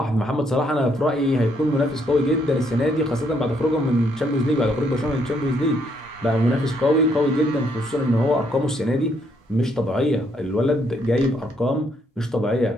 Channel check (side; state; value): both; normal; correlation 0.71